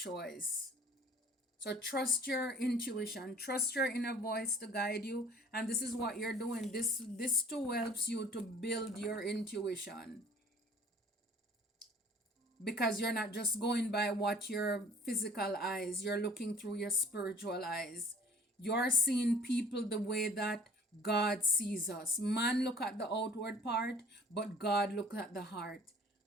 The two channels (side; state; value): both; normal; correlation 0.50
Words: So trust your intuition, trust your inner voice to guide you, and this is what you're doing. This too helps you to build your intuition, because you're not just going by what your physical eyes, you're looking through your spiritual eyes. You're seeing people the way that God sees us. Man look at the outward part, but God look at the heart.